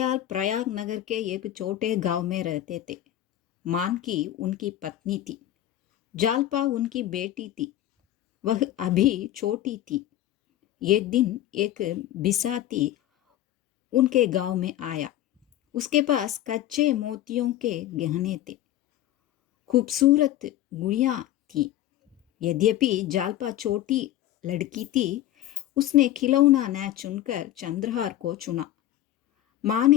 प्रयाग नगर के एक छोटे गांव में रहते थे। मानकी उनकी पत्नी थी। जालपा उनकी बेटी थी। वह अभी छोटी थी। एक दिन एक बिसाती उनके गांव में आया। उसके पास कच्चे मोतियों के गहने थे। खूबसूरत गुड़ियां थी। यद्यपि जालपा छोटी लड़की थी, उसने खिलौना न चुनकर चंद्रहार को चुना। माँ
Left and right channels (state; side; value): quieter; right; 13.1 dB